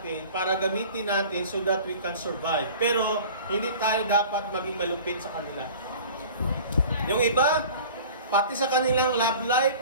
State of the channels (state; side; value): inverted; both; correlation -0.43